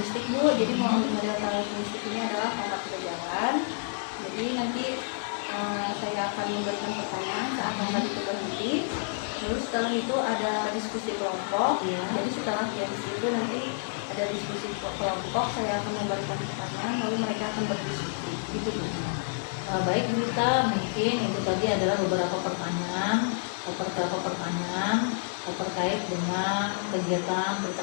Bu. Jadi model karakteristik ini adalah pangkat kejalan. Jadi nanti saya akan memberikan pertanyaan, saya akan beri berhenti. Lalu setelah itu ada diskusi kelompok. Ya. Jadi setelah itu nanti ada diskusi kelompok, saya akan memberikan pertanyaan, lalu mereka akan berdiskusi. Gitu Bu. Baik Bu Dita, mungkin itu tadi adalah beberapa pertanyaan terkait dengan kegiatan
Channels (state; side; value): silent; right; digital silence